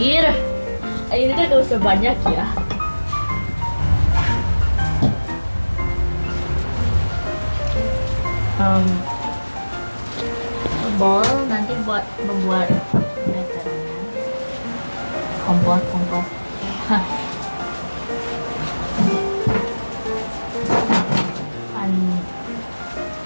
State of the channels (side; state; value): both; inverted; correlation -1.00